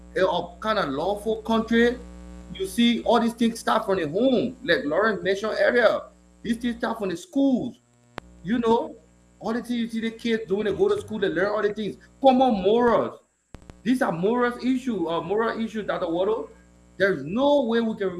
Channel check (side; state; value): both; identical; correlation 1.00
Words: a kind of lawful country, you see all these things start from the home, like Lawrence mentioned earlier. These things start from the schools. You know, all the things you see the kids doing, they go to school, they learn all the things. Common morals. These are moral issues, Dr. Waddle. There's no way we can